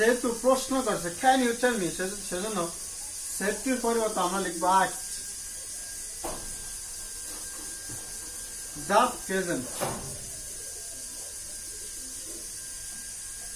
প্রশ্ন করছে ক্যান ইউ টেল মি, সেজন্য সেফটির পরিবর্তে আমরা লিখবো asked the peasant.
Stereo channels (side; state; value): both; identical; correlation 1.00